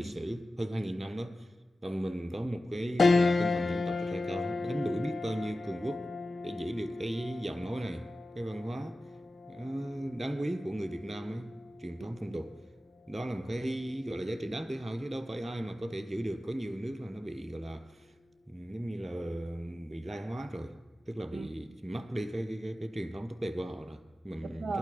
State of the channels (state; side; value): normal; both; correlation 0.94